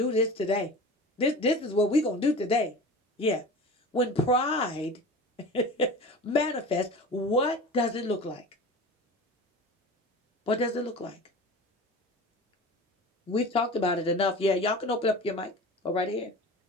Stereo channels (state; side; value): normal; both; correlation 0.35